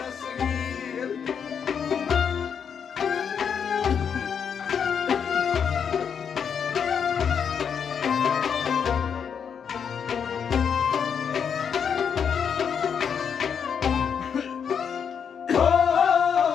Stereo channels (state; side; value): quieter; right; 7.2 dB